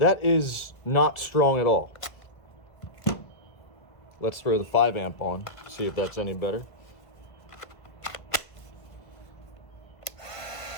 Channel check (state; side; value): late; right; 1.5 ms